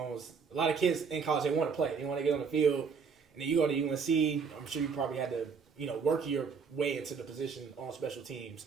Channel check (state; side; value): quieter; left; 5.8 dB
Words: a lot of kids in college, they want to play. They want to get on the field. And then you go to UNC, I'm sure you probably had to, work your way into the position on special teams.